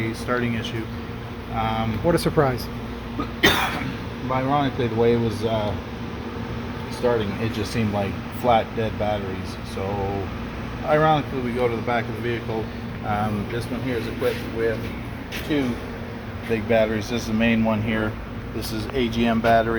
starting issue. What a surprise. Ironically, the way it was starting, it just seemed like flat, dead batteries. So, ironically, we go to the back of the vehicle. This one here is equipped with two big batteries. This is the main one here. This is AGM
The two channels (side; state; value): both; identical; correlation 1.00